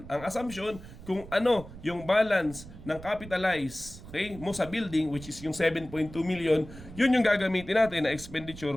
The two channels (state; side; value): noise; right; rumble, 16 dB below the sound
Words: Ang assumption, kung ano yung balance ng capitalize, okay, mo sa building, which is yung 7.2 million, yun yung gagamitin natin na expenditure